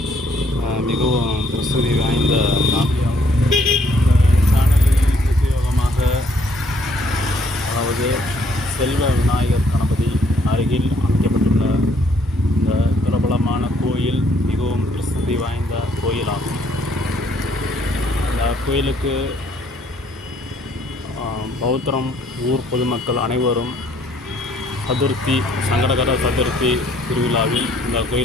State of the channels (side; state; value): both; normal; correlation 0.66